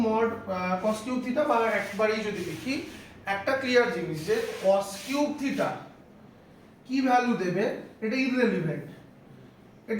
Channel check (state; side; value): identical; both; correlation 1.00